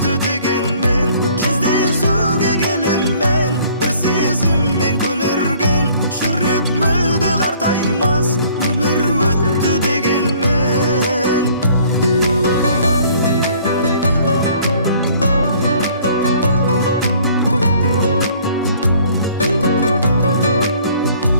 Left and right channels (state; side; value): inverted; both; correlation -0.57